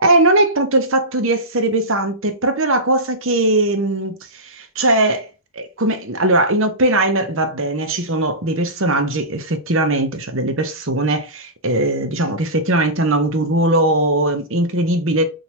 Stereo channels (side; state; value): both; normal; correlation -0.17